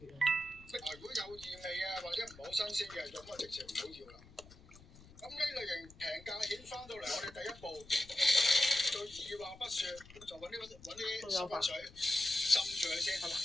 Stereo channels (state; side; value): noise; left; rumble, 21 dB below the sound